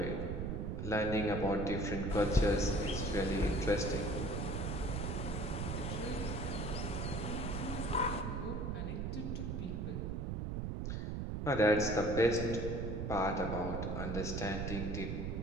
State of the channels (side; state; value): right; noise; rumble, 2 dB below the sound